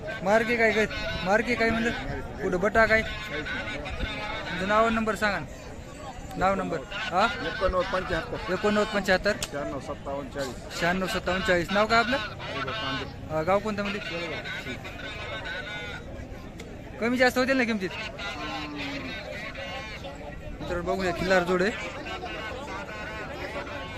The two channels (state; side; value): identical; both; correlation 1.00